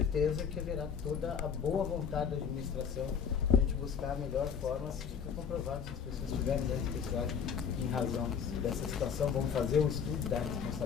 que haverá toda a boa vontade da administração para a gente buscar a melhor forma, se fica comprovado se as pessoas tiverem danos pessoais em razão dessa situação. Vamos fazer o estudo da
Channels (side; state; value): right; quieter; 7.1 dB